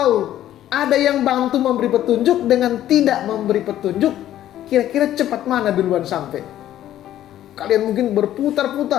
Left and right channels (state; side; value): quieter; right; 12.5 dB